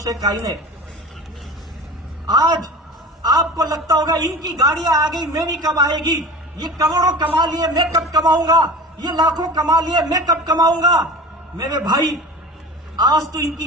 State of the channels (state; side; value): normal; both; correlation 0.35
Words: काइनेट। आज आपको लगता होगा इनकी गाड़ियां आ गई, मेरी कब आएगी, ये करोड़ों कमा लिए, मैं कब कमाऊंगा, ये लाखों कमा लिए, मैं कब कमाऊंगा। मेरे भाई, आज तो